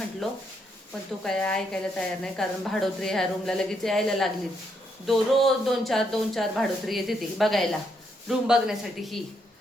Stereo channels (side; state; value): both; normal; correlation 0.76